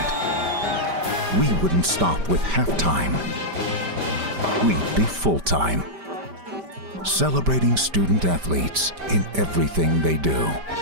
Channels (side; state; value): left; late; 5.1 ms